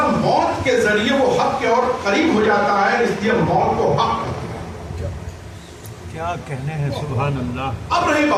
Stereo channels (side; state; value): both; identical; correlation 1.00